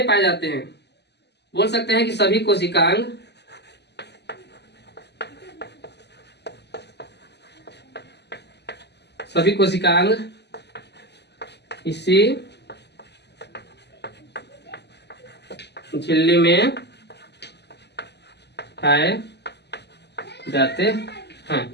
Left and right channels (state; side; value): late; right; 0.50 ms